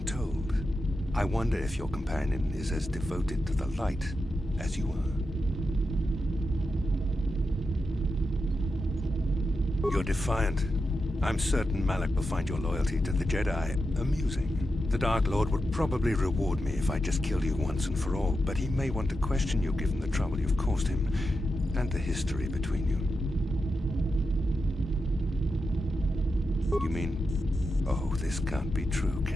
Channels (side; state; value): both; normal; correlation 0.88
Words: told. I wonder if your companion is as devoted to the light as you are. You're defiant. I'm certain Malak will find your loyalty to the Jedi amusing. The Dark Lord would probably reward me if I just killed you once and for all, but he may want to question you given the trouble you've caused him, and the history between you. You mean... Oh, this can't be true,